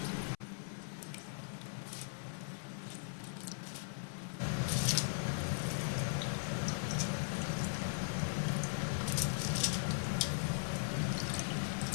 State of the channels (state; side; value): silent; right; 52 dB below the other